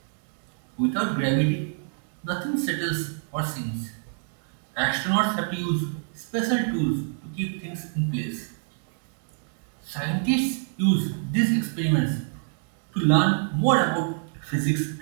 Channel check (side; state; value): left; silent; 60 dB below the other